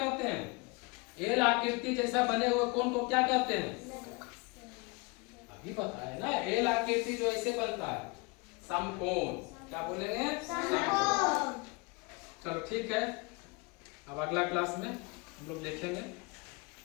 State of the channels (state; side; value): quieter; right; 28.2 dB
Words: हैं? एल आकृति जैसा बने हुए कोण को क्या कहते हैं? अभी बताए ना, एल आकृति जो ऐसे बनता है समकोण, क्या बोलेंगे? समकोण। चलो ठीक है, अब अगला क्लास में हम लोग देखेंगे।